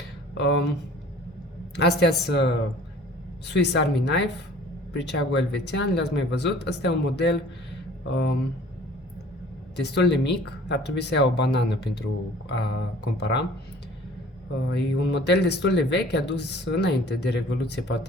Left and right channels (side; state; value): both; normal; correlation 0.49